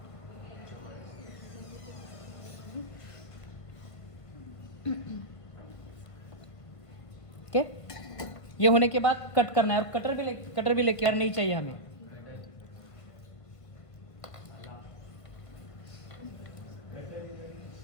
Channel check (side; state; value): right; late; 1.5 ms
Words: ओके, ये होने के बाद कट करना है, और कटर भी लेके नहीं चाहिए हमें।